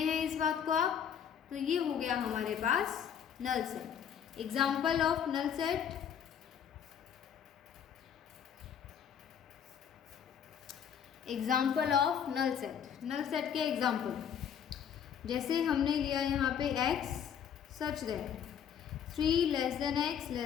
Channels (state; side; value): quieter; right; 8.4 dB